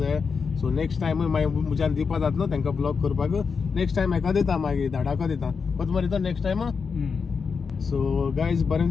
सो नेक्स्ट टायमूय मागीर म्हज्यान दिवपा जाता न्हू तांकां ब्लॉग करपाक. नेक्स्ट टायम हेका दिता मागीर धाडाको दिता. कोत मरे तो नेक्स्ट टायम. सो गायज बरें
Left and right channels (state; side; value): quieter; right; 5.5 dB